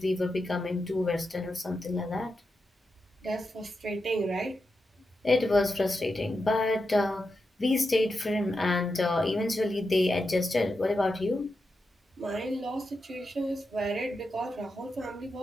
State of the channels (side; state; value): both; normal; correlation 0.88